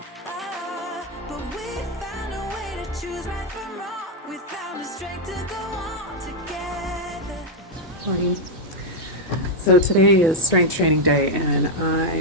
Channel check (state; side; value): normal; both; correlation 0.00